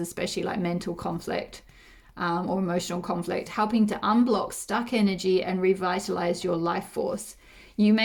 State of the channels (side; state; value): both; identical; correlation 1.00